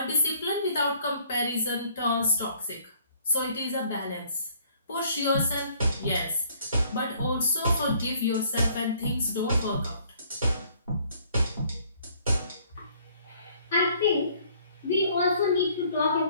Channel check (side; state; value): both; inverted; correlation -0.60